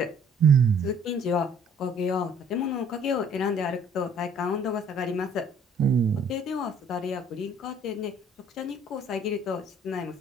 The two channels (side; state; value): both; normal; correlation 0.58